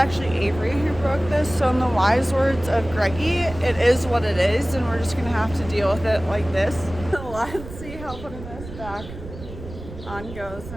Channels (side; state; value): right; noise; rumble, 13 dB below the sound